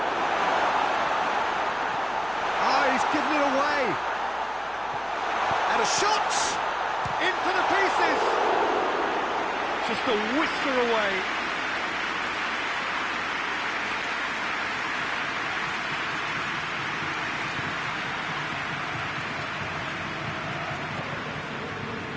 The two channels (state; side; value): noise; left; hum, 27 dB below the sound